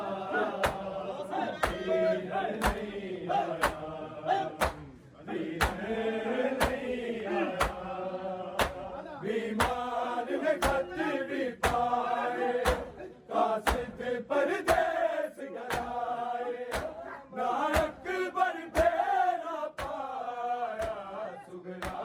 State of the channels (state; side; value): identical; both; correlation 1.00